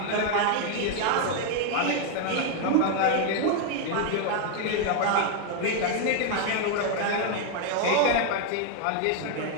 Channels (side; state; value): both; different; correlation 0.00